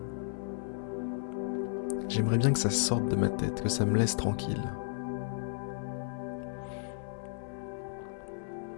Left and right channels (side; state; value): right; silent; 55 dB below the other